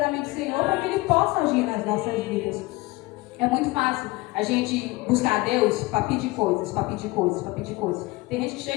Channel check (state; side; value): quieter; right; 21.8 dB